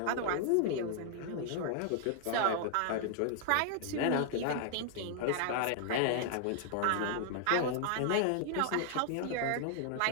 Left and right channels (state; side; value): different; both; correlation 0.00